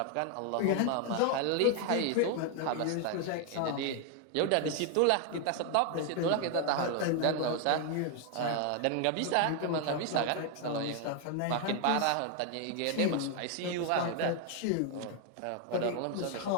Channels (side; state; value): both; different; correlation 0.00